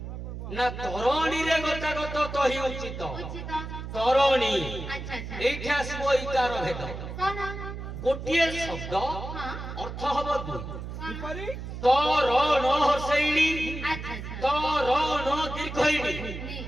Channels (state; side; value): noise; right; hum, 8 dB below the sound